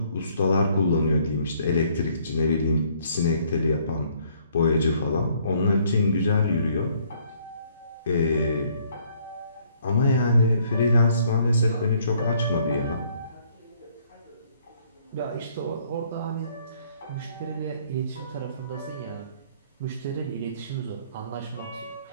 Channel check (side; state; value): both; inverted; correlation -0.64